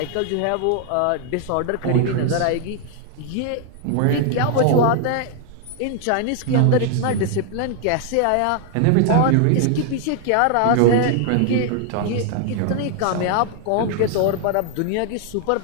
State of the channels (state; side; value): different; both; correlation 0.00